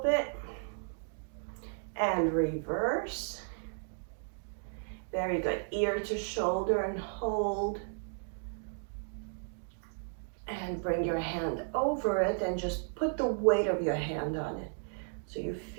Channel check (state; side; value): silent; left; digital silence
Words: bit. And reverse. Very good. Ear to shoulder and hold. And bring your hand over it and just put the weight of your hand on it. So you